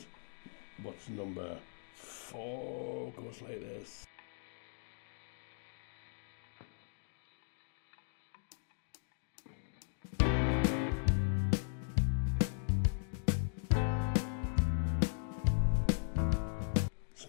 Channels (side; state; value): right; silent; digital silence